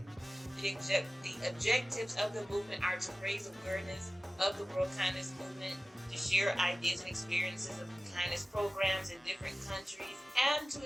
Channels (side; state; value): both; normal; correlation 0.96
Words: The objectives of the movement are to raise awareness of the World Kindness Movement, to share ideas and experiences of kindness programs in different countries, and to